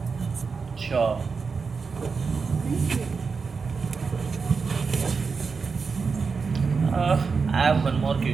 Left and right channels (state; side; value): quieter; left; 5.0 dB